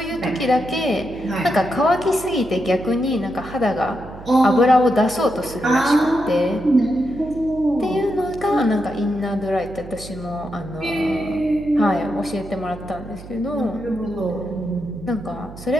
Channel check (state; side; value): noise; right; hum, 15 dB below the sound